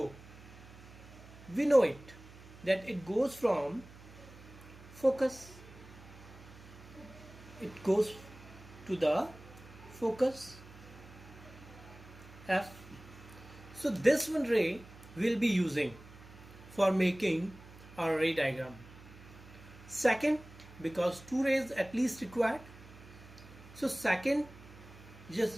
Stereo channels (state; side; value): noise; right; hum, 19 dB below the sound